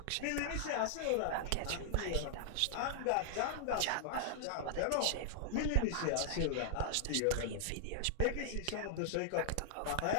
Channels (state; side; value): different; both; correlation -0.01